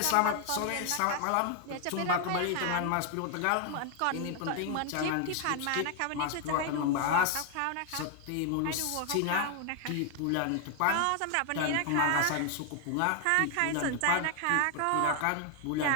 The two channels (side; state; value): both; different; correlation 0.00